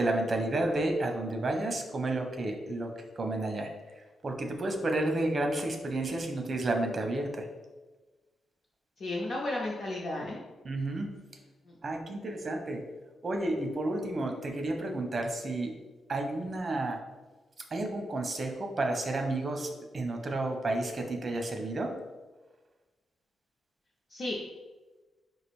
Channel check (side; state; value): both; normal; correlation 0.85